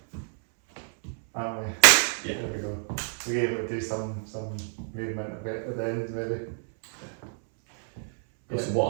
aren't we? Yeah. There we go. We're able to do some movement a bit at the end, maybe. So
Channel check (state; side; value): silent; left; 59 dB below the other